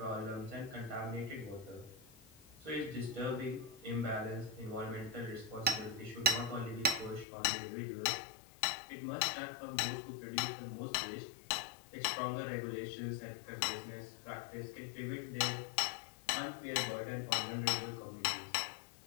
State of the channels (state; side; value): drops out; right; at 7.2 s